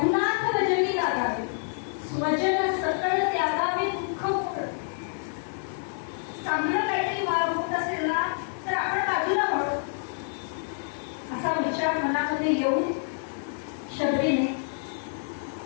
भजनी लागावे, स्वजन सकळ त्यागावे दुःख मोड. चांगलं काहीतरी होत असेल ना तर आपण बाजूला वळू, असा विचार मनामध्ये येऊन शबरीने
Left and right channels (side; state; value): right; silent; digital silence